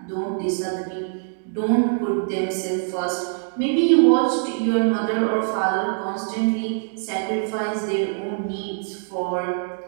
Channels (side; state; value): left; silent; digital silence